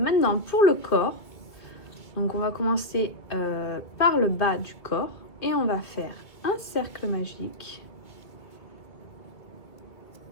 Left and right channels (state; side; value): late; right; 2.4 ms